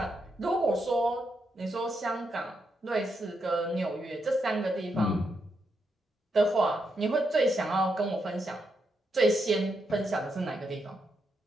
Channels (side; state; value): both; normal; correlation 0.81